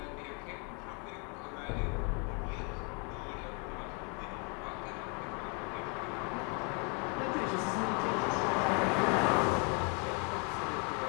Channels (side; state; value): right; quieter; 34.9 dB